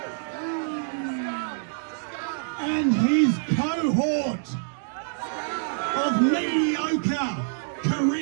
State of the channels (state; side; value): silent; left; digital silence